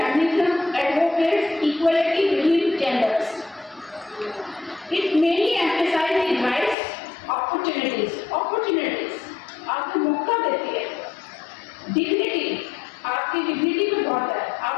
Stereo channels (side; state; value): right; drops out; at 6.8 s